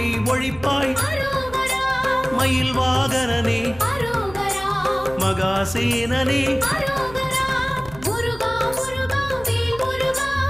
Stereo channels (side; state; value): right; noise; hum, 19 dB below the sound